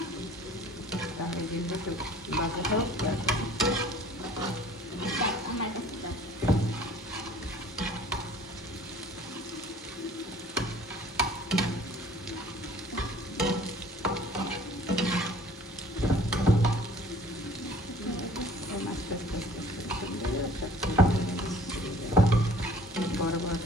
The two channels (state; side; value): normal; both; correlation 0.51